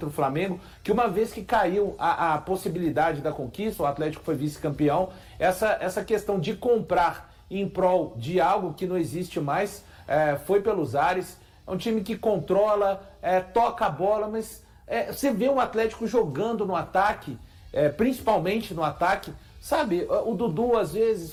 o Flamengo, que uma vez que caiu a possibilidade da conquista, o Atlético foi vice-campeão, essa questão de comprar em prol de algo que não existe mais, foi pelos ares. É um time que controla, toca a bola, mas você vê o Atlético jogando no ataque, principalmente no ataque, sabe? O Dudu às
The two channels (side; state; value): both; identical; correlation 1.00